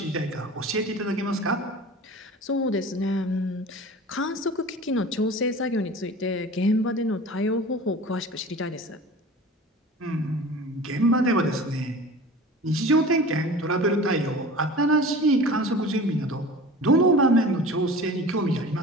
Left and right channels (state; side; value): normal; both; correlation 0.38